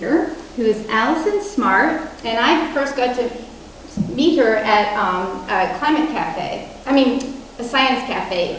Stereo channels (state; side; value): identical; both; correlation 1.00